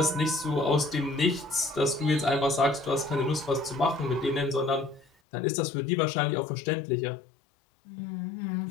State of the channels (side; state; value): right; drops out; at 5.1 s